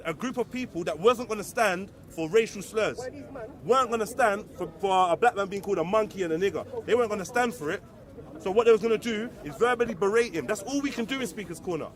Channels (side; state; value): both; identical; correlation 1.00